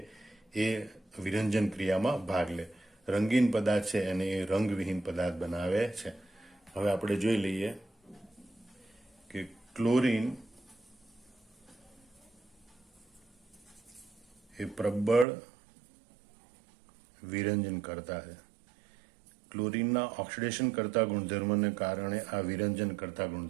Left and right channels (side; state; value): left; drops out; at 15.2 s